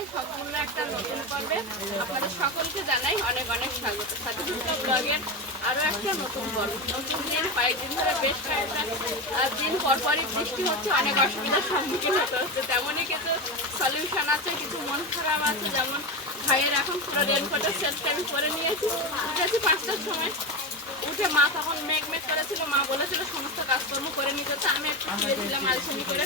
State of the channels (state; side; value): normal; both; correlation 0.18